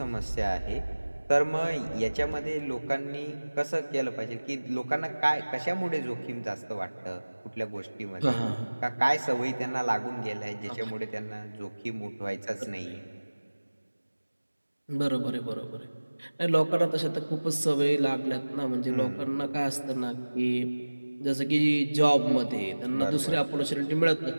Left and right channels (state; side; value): inverted; both; correlation -1.00